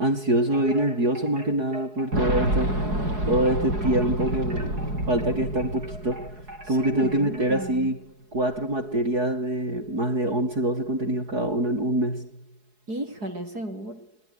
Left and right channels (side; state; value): left; late; 4.7 ms